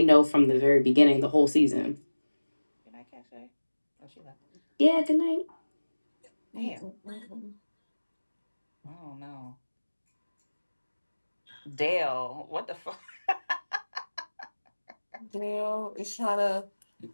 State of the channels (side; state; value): both; inverted; correlation -1.00